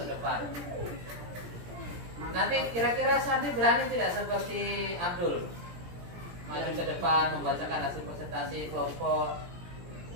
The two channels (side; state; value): left; late; 17 ms